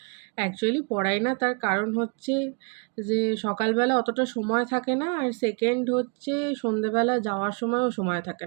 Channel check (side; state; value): left; quieter; 34.9 dB